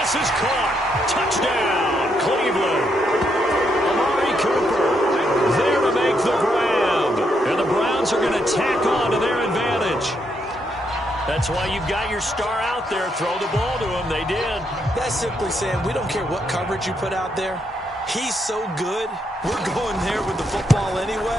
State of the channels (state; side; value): normal; both; correlation 0.77